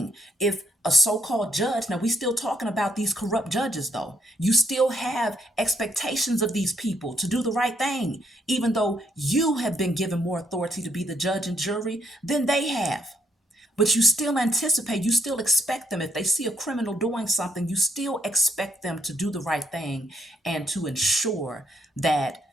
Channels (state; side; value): normal; both; correlation 0.74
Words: if a so-called judge, now we still talking about these corrupt judges though. You still have expectations of these people to do the right thing, even though you have been given more authority to be the judge and jury than they have. But you still anticipate, you still expect them. If they see a criminal doing something, you still expect them to do the right thing and to ensure that